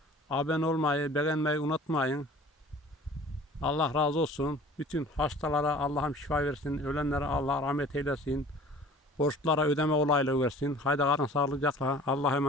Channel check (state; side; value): normal; both; correlation 0.46